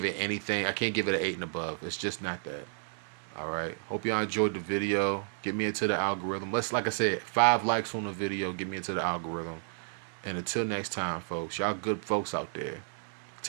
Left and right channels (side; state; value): left; silent; digital silence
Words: it anything. I can't give it an 8 and above. It's just not that. All right. Hope y'all enjoyed the video. Get me into the algorithm. Like I said, 5 likes on the video. Get me into the algorithm. And until next time, folks, y'all good folks out there.